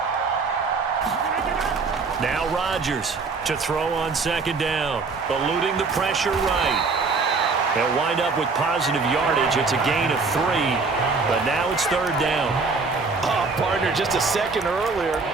Now Rodgers to throw on second down, eluding the pressure right. They'll wind up with positive yardage. It's a gain of 3, but now it's third down. Oh, partner, just a second earlier,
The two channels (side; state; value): left; quieter; 4.3 dB